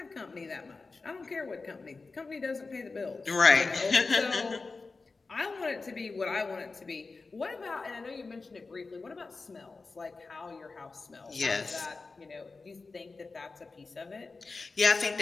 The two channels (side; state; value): right; quieter; 4.0 dB